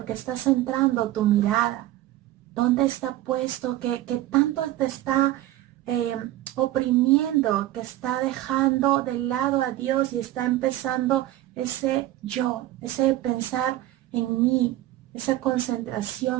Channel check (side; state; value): left; quieter; 15.0 dB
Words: que está centrando tu mirada? ¿Dónde está puesto que tanto te está oprimiendo, que está dejando de lado a Dios y está empezando ese yo, ese pensar en mí, esa